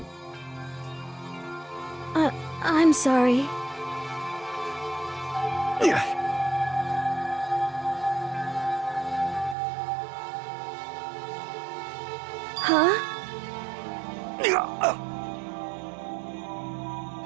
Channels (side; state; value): left; drops out; at 9.6 s